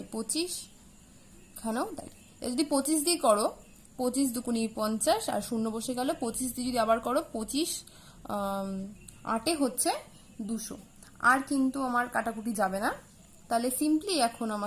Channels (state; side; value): identical; both; correlation 1.00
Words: এখানেও তাই। যদি 25 দিয়ে করো, 25 দুগুণি 50 আর শূন্য বসে গেল, 25 দিয়ে যদি আবার করো 25 8 হচ্ছে 200, আর কিন্তু আমার কাটাকুটি যাবে না। তাহলে সিম্পলি এখন